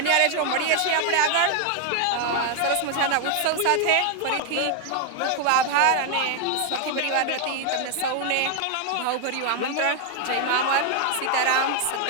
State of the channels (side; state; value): both; different; correlation 0.00